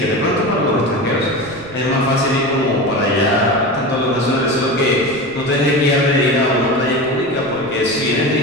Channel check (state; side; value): noise; right; rumble, 20 dB below the sound